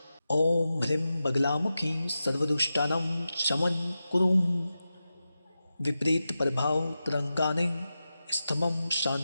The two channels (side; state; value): both; inverted; correlation -0.92